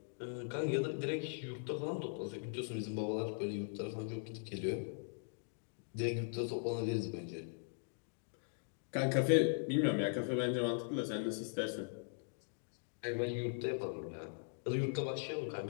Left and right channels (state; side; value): silent; right; digital silence